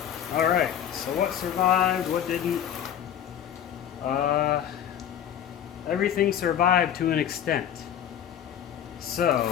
All right, so what survived, what didn't? Everything survived to an extent.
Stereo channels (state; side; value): quieter; right; 9.7 dB